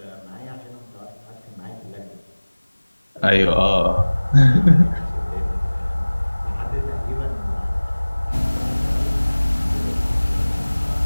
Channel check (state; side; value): inverted; both; correlation -1.00